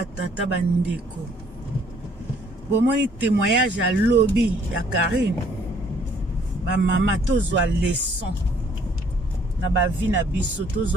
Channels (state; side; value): normal; both; correlation 0.62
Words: tata, ba ndeko. Bon, mon témoignage à lobby, ya Karine. Ba maman, tozwa leçon. Na ba vie na biso,